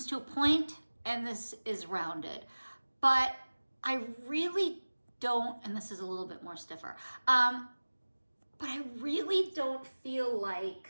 to a point and this is rounded. But I really don't, and this is a little bit more stiffer, but I really don't feel like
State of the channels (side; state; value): both; inverted; correlation -1.00